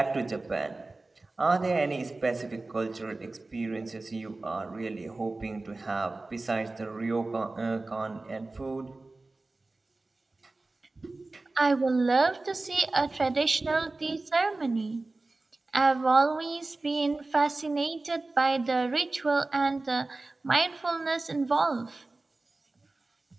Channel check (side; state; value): left; quieter; 3.2 dB